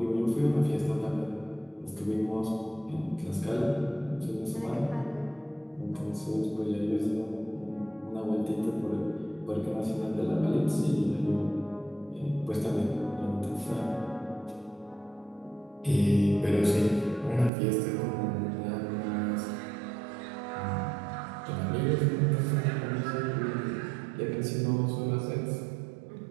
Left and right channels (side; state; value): left; drops out; at 17.5 s